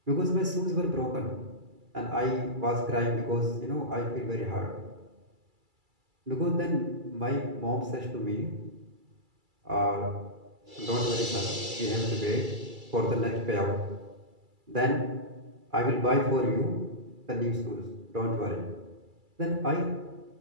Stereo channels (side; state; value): left; late; 2.3 ms